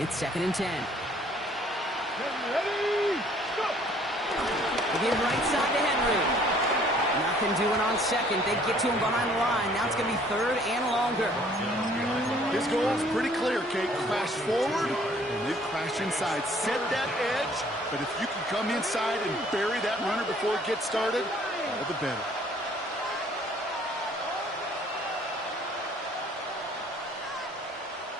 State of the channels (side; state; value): both; normal; correlation 0.58